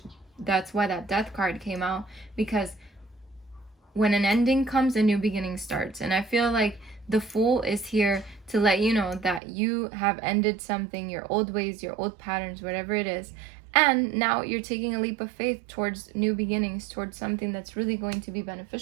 that's why that Death card came out, because when an ending comes, a new beginning starts. And I feel like the Fool is here to let you know that you have ended something, your old ways, your old patterns, whatever it is, and now you're taking a leap of faith towards new beginnings, towards something that's really going to be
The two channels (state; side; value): drops out; left; at 9.4 s